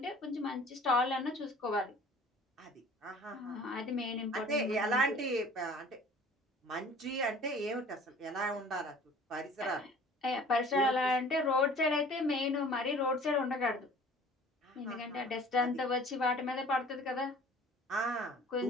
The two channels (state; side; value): normal; both; correlation 0.48